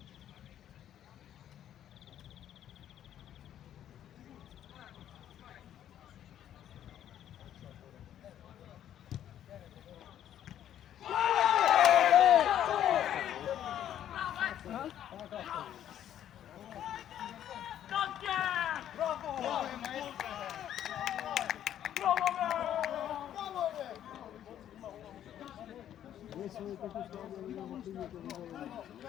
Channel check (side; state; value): right; quieter; 10.8 dB